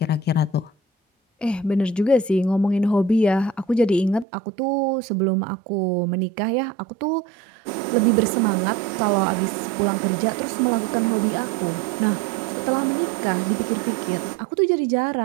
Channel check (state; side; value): drops out; left; at 4.2 s